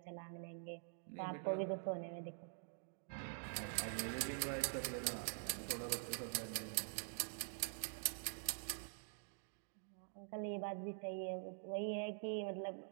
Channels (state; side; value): silent; left; digital silence